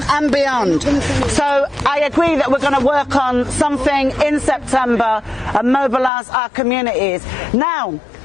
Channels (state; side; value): drops out; right; at 6.1 s